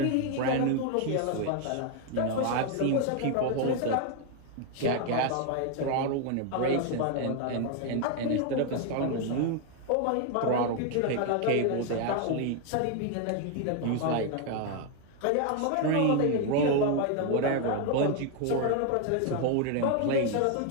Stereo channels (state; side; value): different; both; correlation 0.01